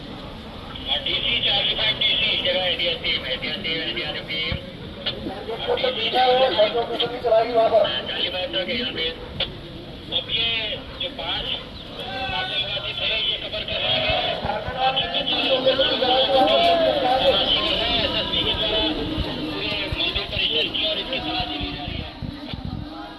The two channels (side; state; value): both; identical; correlation 1.00